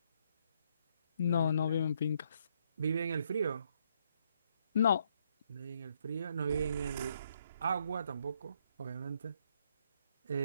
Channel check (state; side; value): inverted; both; correlation -0.72